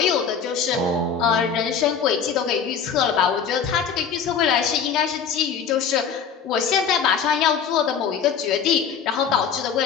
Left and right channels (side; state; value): right; quieter; 6.9 dB